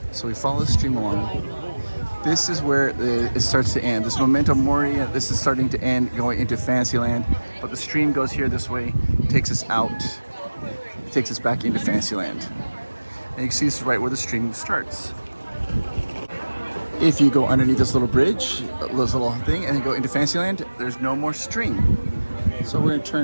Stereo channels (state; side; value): inverted; both; correlation -1.00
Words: so we follow the stream along. This is where it starts to end. This Memento Mori, this is starting to end, going into Fantasyland. But the stream goes here this way, takes us out. It takes us back into Fantasyland. And you can see this is right where the stream starts. If you go underneath this little bridge, this little thing, and then go into Fantasyland, there's no more stream. So we're gonna